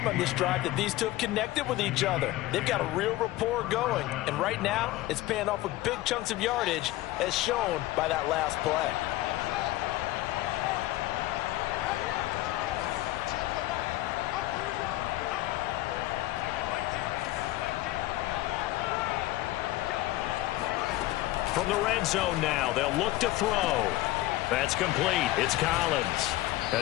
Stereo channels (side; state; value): right; quieter; 16.7 dB